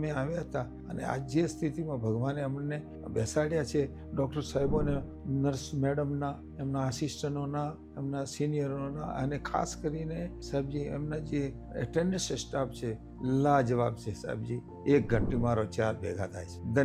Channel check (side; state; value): both; identical; correlation 1.00